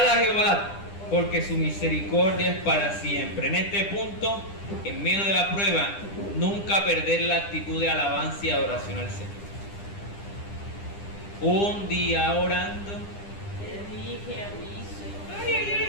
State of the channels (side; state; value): right; late; 10 ms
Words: a Jehová, porque su misericordia es para siempre. En este punto, en medio de la prueba, nunca perder la actitud de alabanza y adoración al Señor. Un día orando,